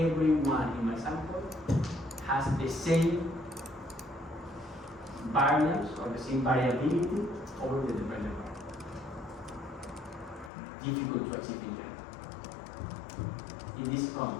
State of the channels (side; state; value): right; drops out; at 10.5 s